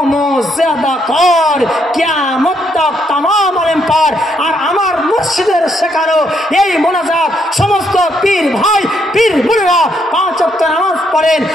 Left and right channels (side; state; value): both; normal; correlation 0.74